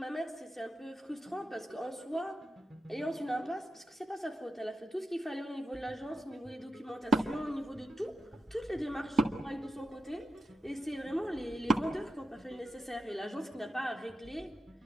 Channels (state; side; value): normal; both; correlation 0.90